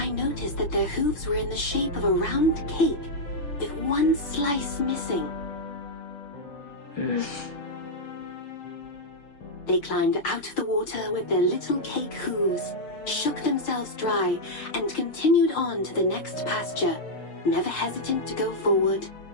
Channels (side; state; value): right; late; 6.7 ms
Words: noticed that their hooves were in the shape of a round cake, with one slice missing. They climbed out of the water with their little cake hooves, shook themselves dry, and continued on to the next pasture, never hesitant to go forward,